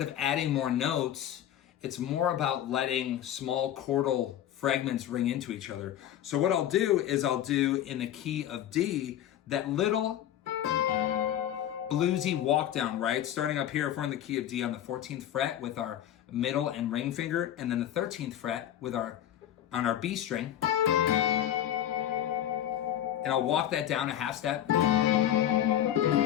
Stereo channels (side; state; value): right; quieter; 11.3 dB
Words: of adding more notes, it's more about letting small chordal fragments ring into each other. So what I'll do is I'll do in the key of D, that little bluesy walk down, right? Starting up here, if we're in the key of D on the 14th fret with our middle and ring finger, and then the 13th fret with on our B string. And I'll walk that down a half step.